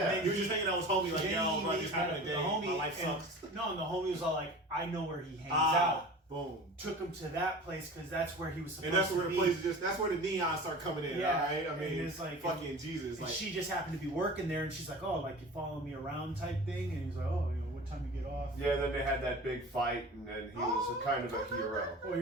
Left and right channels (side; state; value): both; normal; correlation 0.38